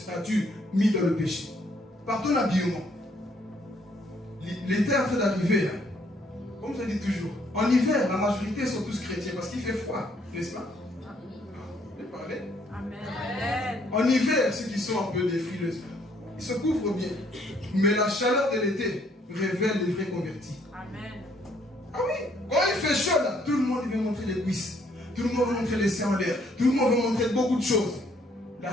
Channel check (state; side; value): normal; both; correlation 0.67